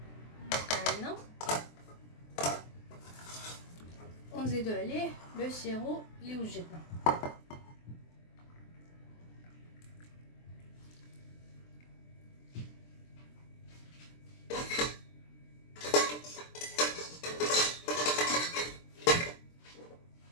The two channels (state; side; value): late; right; 23 ms